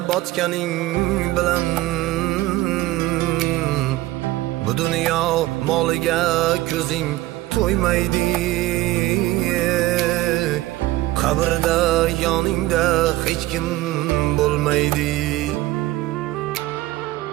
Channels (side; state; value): left; quieter; 17.0 dB